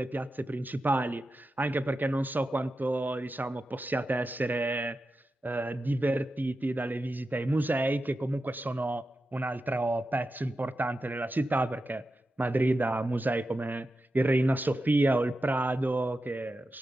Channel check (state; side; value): normal; both; correlation 0.91